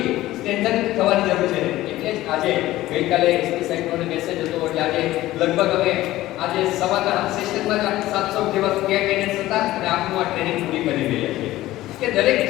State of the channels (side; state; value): right; quieter; 16.1 dB